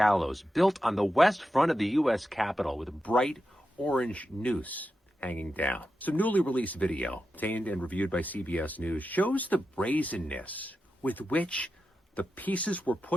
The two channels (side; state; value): both; normal; correlation 0.89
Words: built on the west front of the U.S. Capitol with a bright orange noose hanging down. Some newly released video, obtained and reviewed by CBS News, shows the brazenness with which the pieces were